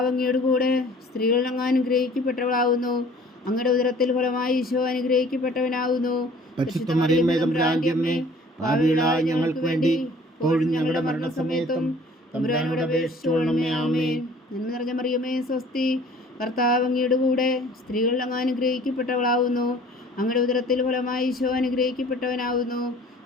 അങ്ങയുടെ കൂടെ സ്ത്രീകൾ അങ്ങ് അനുഗ്രഹിക്കപ്പെട്ടവളാവുന്നു. അങ്ങയുടെ ഉദരത്തിൽ ഫലമായി ഈശോ അനുഗ്രഹിക്കപ്പെട്ടവനാവുന്നു. പരിശുദ്ധ മറിയമേ, തമ്പുരാന്റെ അമ്മേ, പാപികളായ ഞങ്ങൾക്ക് വേണ്ടി ഇപ്പോഴും ഞങ്ങളുടെ മരണസമയത്തും തമ്പുരാനോട് അപേക്ഷിച്ചുകൊള്ളണമേ. ആമേൻ. നന്മ നിറഞ്ഞ മറിയമേ, സ്വസ്തി. കർത്താവ് അങ്ങയുടെ കൂടെ സ്ത്രീകൾ അങ്ങ് അനുഗ്രഹിക്കപ്പെട്ടവളാവുന്നു. അങ്ങയുടെ ഉദരത്തിൽ ഫലമായി ഈശോ അനുഗ്രഹിക്കപ്പെട്ടവനാവുന്നു.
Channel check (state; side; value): normal; both; correlation 0.51